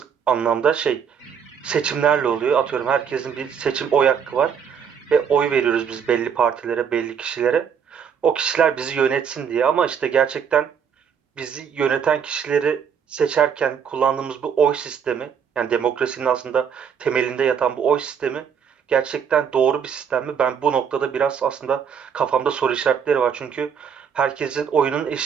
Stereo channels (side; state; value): left; quieter; 7.4 dB